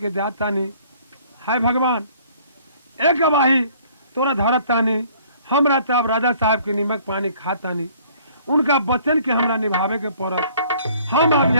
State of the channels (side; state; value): both; inverted; correlation -0.57